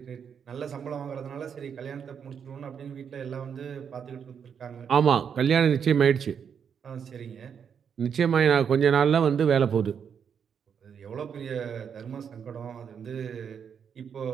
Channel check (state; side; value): quieter; left; 7.4 dB